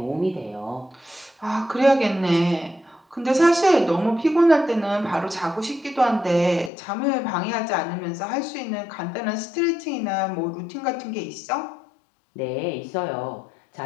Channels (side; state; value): right; drops out; at 6.7 s